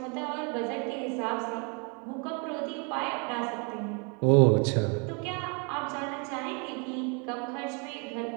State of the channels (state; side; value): quieter; left; 34.8 dB